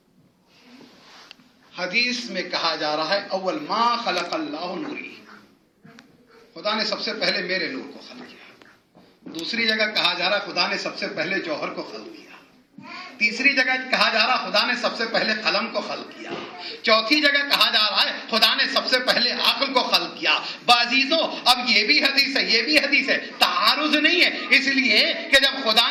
حدیث میں کہا جا رہا ہے اول ما خلق اللہ نوری، خدا نے سب سے پہلے میرے نور کو خلق کیا۔ دوسری جگہ کہا جا رہا ہے خدا نے سب سے پہلے جوہر کو خلق کیا۔ تیسری جگہ کہا جا رہا خدا نے سب سے پہلے قلم کو خلق کیا۔ چوتھی جگہ کہا جا رہا ہے خدا نے سب سے پہلے عقل کو خلق کیا۔ بعزیزو اب یہ بھی حدیث ہے، یہ بھی حدیث ہے، تعارض نہیں ہے، اس لیے کہ جب خدا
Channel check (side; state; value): both; identical; correlation 1.00